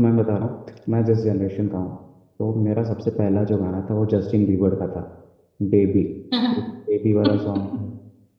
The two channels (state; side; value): identical; both; correlation 1.00